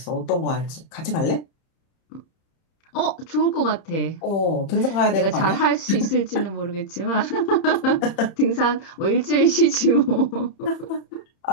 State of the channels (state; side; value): late; right; 30 ms